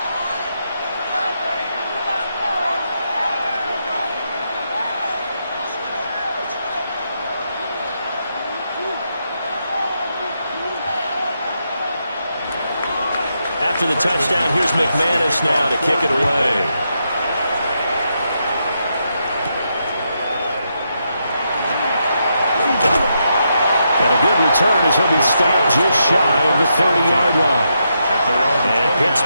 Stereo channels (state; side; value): inverted; both; correlation -0.82